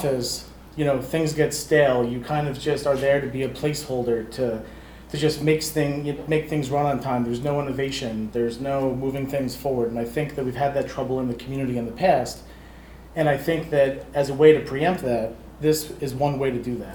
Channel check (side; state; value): both; identical; correlation 1.00